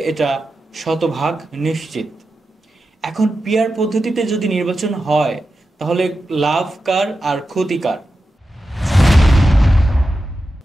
এটা শতভাগ নিশ্চিত। এখন পিআর পদ্ধতিতে যদি নির্বাচন হয় তাহলে লাভ কার আর ক্ষতি কার?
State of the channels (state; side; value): normal; both; correlation 0.91